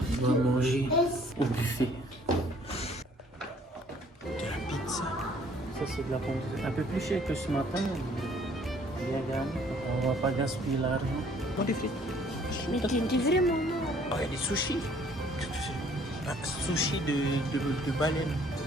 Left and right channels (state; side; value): normal; both; correlation 0.59